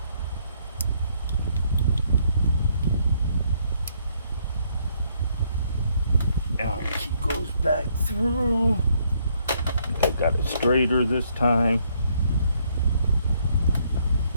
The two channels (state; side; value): inverted; both; correlation -0.70